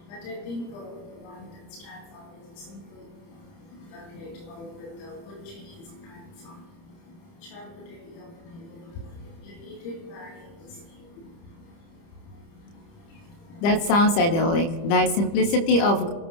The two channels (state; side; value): late; right; 30 ms